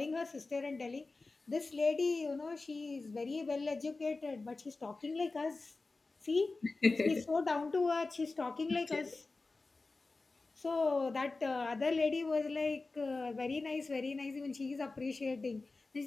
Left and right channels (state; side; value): quieter; right; 3.6 dB